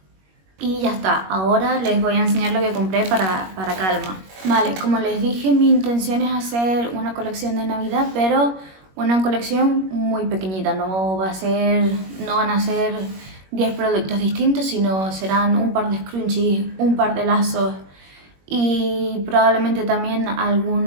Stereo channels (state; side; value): late; left; 21 ms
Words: Y ya está, ahora les voy a enseñar lo que compré para Calma. Vale, como les dije, mi intención es hacer una colección de Navidad, pero una colección muy pequeñita. No van a ser 10 productos distintos, sino serán un par de scrunchies, un par de lazos y probablemente también